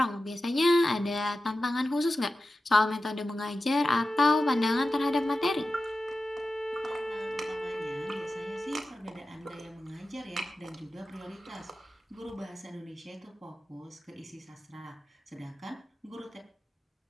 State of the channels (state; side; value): normal; both; correlation 0.93